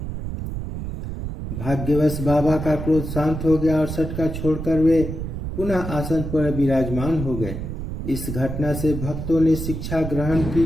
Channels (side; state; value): right; noise; rumble, 6 dB below the sound